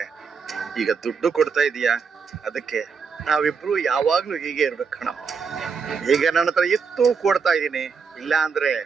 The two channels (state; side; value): quieter; left; 5.7 dB